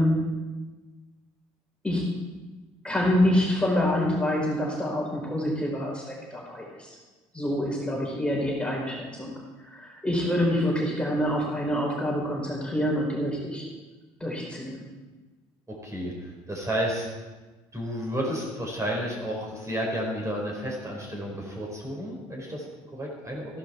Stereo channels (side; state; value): both; normal; correlation 0.71